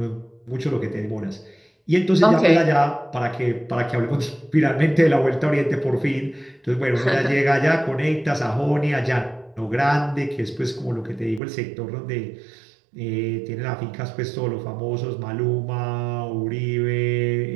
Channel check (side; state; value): left; drops out; at 11.4 s